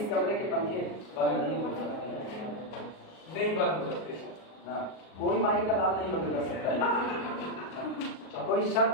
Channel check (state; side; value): late; right; 38 ms